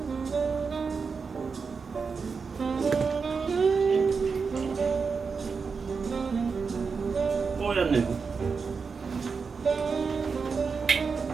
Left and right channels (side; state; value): left; quieter; 5.2 dB